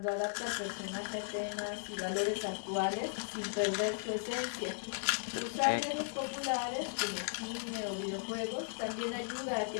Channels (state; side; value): silent; right; 53 dB below the other